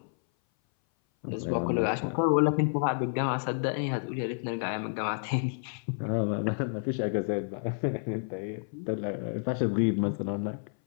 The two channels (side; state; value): right; silent; 58 dB below the other